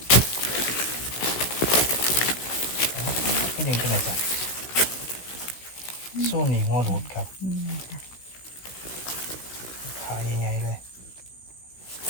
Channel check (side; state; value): right; late; 16 ms